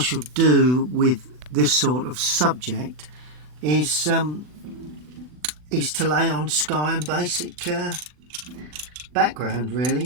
do with this sort of subject is to lay on sky and basic background,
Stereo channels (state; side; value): late; left; 40 ms